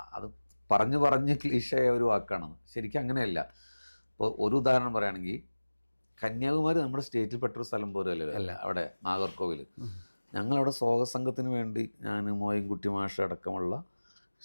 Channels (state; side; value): inverted; both; correlation -1.00